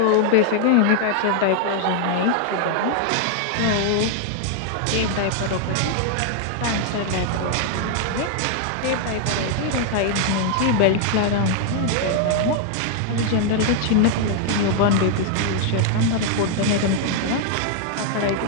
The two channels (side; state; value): both; different; correlation 0.00